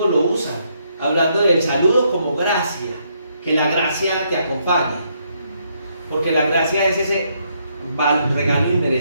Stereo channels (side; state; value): both; inverted; correlation -0.74